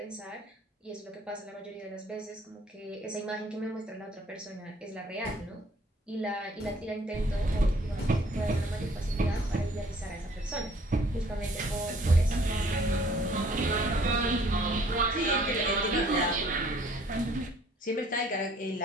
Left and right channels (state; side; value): normal; both; correlation 0.58